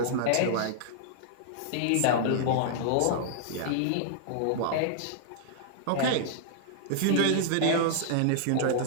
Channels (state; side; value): different; both; correlation -0.01